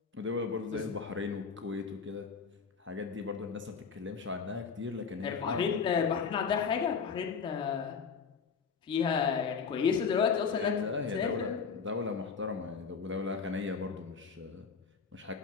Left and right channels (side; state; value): right; quieter; 5.8 dB